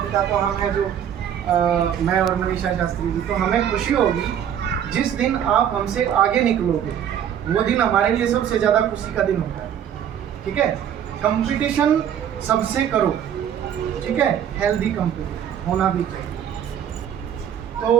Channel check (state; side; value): quieter; left; 9.4 dB